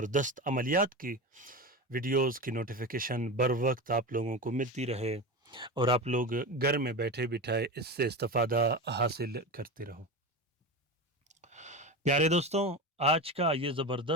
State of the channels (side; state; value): both; normal; correlation 0.23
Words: अमलियात की वीडियोस की नोटिफिकेशन बर वक्त आप लोगों को मिलती रहे और आप लोग घर में बैठे बिठाए इससे इस्तेफ़ादा हासिल करते रहो। प्यारे दोस्तों, आज का ये